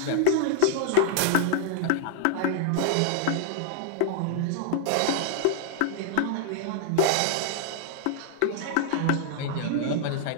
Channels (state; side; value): different; both; correlation -0.01